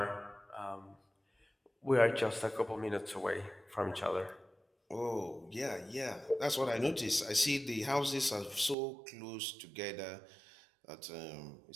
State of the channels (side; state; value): left; drops out; at 8.8 s